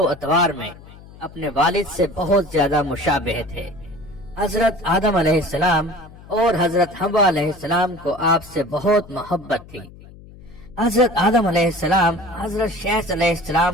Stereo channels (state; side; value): noise; left; hum, 20 dB below the sound